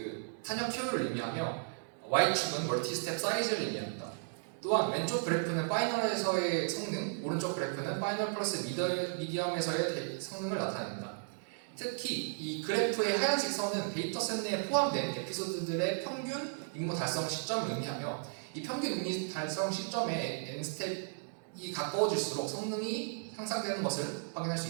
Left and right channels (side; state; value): left; silent; digital silence